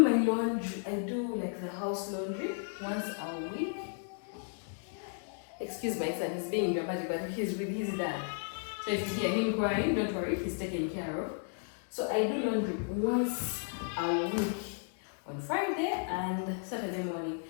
laundry, I do like the house laundry once a week. Excuse my son, he's being dramatic, but he's with his dad. So if you hear him crying, don't worry, he's taken care of. So I do laundry once a week on Friday and Saturday morning.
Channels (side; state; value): right; silent; 55 dB below the other